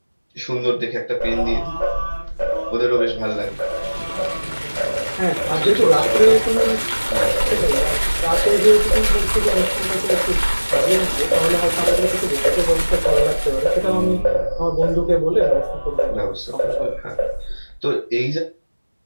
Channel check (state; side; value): inverted; both; correlation -1.00